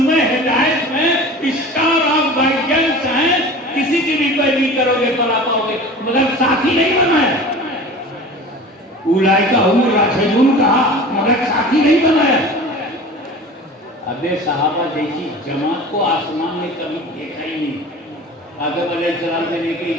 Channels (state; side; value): normal; both; correlation 0.38